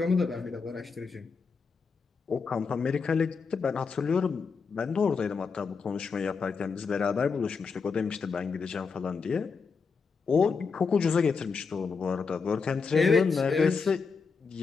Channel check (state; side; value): quieter; right; 5.1 dB